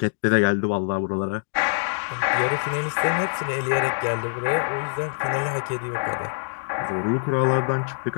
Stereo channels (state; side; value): silent; right; 62 dB below the other